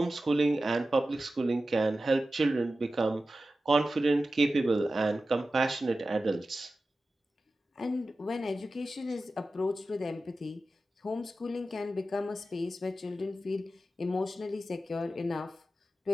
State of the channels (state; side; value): normal; both; correlation 0.94